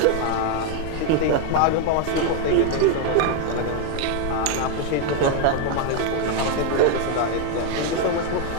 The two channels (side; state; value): both; different; correlation 0.01